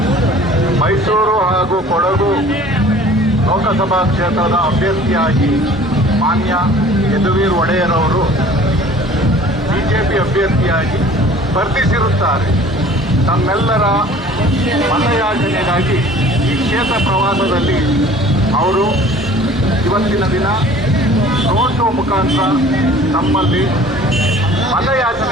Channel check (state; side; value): normal; both; correlation 0.49